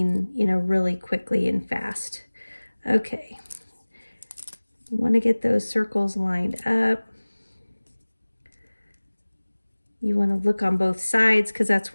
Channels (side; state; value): both; inverted; correlation -1.00